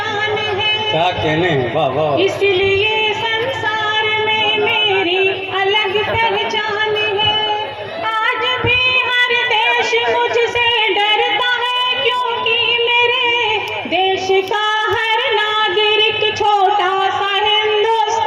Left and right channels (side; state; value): both; identical; correlation 1.00